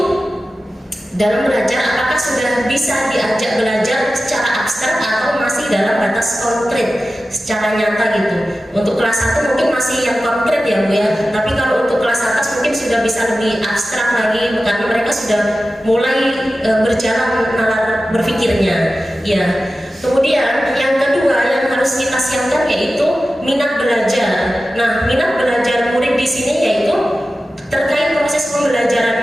dalam belajar apakah sudah bisa diajak belajar secara abstrak atau masih dalam batas konkret secara nyata gitu. Untuk kelas 1 mungkin masih yang konkret ya Bu ya, tapi kalau untuk kelas atas mungkin sudah bisa lebih abstrak lagi karena mereka sudah mulai berjalan nalar berpikirnya ya. Kemudian yang kedua yang harus kita siapkan yaitu minat belajar. Nah, minat belajar murid di sini yaitu terkait proses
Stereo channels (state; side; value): normal; both; correlation 0.94